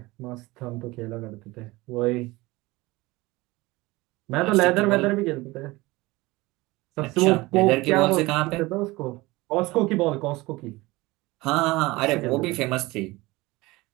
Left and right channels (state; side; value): quieter; left; 21.2 dB